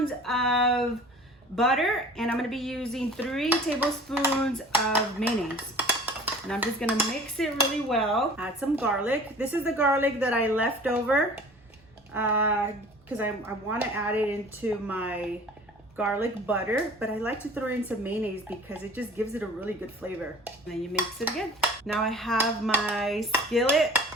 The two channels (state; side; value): normal; both; correlation 0.44